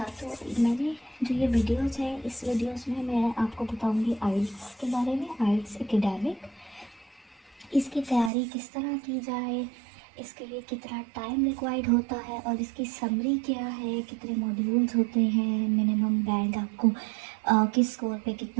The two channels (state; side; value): drops out; left; at 8.3 s